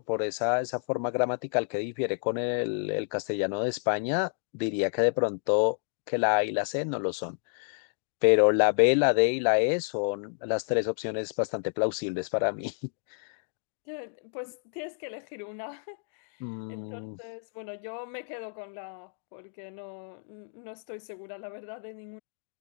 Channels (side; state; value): right; silent; digital silence